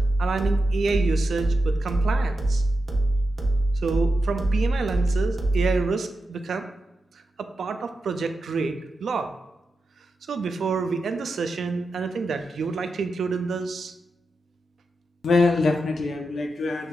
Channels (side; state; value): both; normal; correlation 0.89